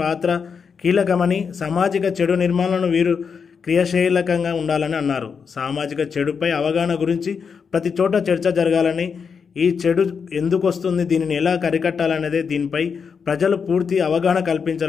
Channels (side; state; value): right; quieter; 6.1 dB